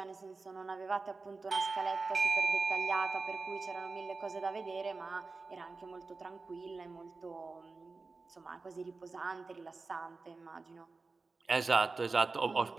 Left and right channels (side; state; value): left; quieter; 3.9 dB